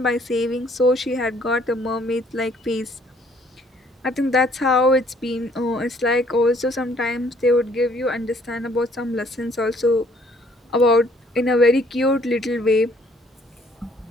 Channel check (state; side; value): normal; both; correlation 0.62